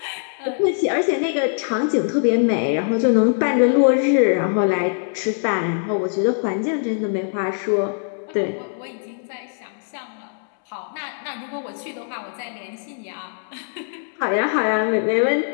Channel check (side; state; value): right; silent; 64 dB below the other